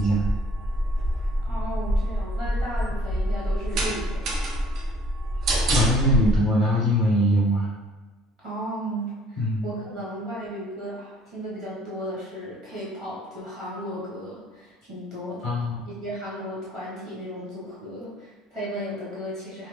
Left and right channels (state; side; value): normal; both; correlation 0.58